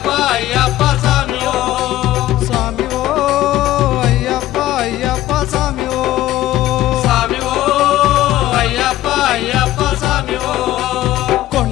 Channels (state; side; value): quieter; right; 14.8 dB